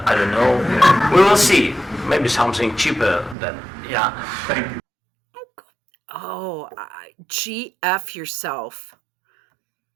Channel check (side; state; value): left; drops out; at 3.4 s